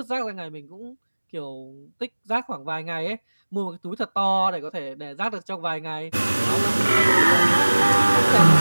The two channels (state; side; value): inverted; both; correlation -1.00